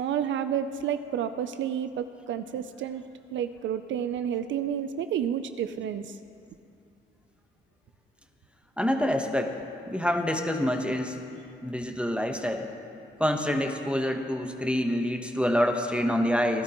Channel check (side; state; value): both; normal; correlation 0.67